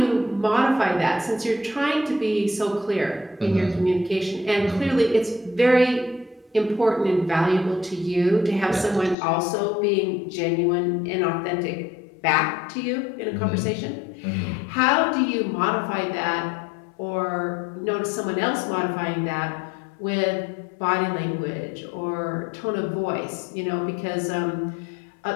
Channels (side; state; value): right; drops out; at 9.2 s